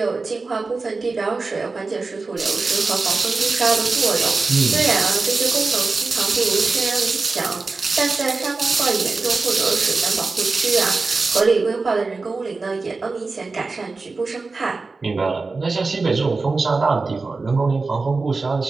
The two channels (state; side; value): quieter; left; 3.9 dB